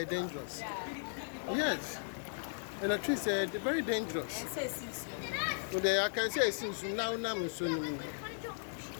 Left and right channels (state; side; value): silent; right; digital silence